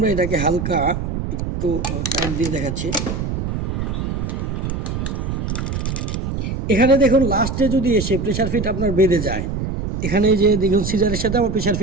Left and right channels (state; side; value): noise; right; rumble, 3 dB below the sound